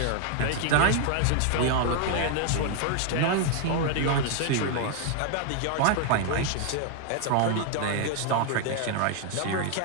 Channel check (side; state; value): both; different; correlation 0.00